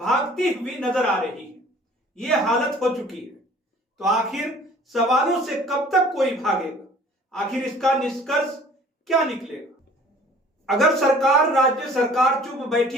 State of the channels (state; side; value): normal; both; correlation 0.50